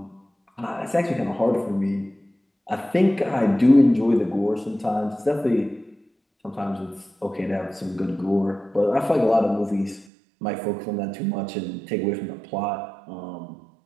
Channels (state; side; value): drops out; left; at 10.1 s